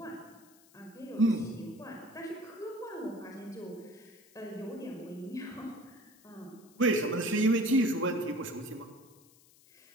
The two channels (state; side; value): noise; left; hiss, 27 dB below the sound